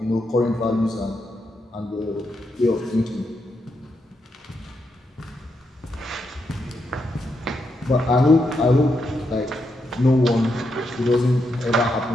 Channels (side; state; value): both; normal; correlation 0.82